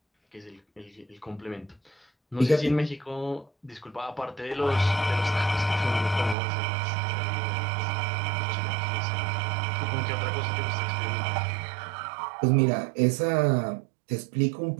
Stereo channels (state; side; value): drops out; left; at 6.4 s